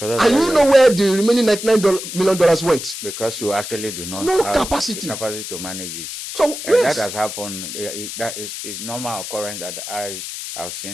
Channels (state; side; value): noise; left; hiss, 8 dB below the sound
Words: And you know where the remaining $99 million went. Because you actually do not have capacity to manage it. So yes, that has happened. That is a normal occurrence that I have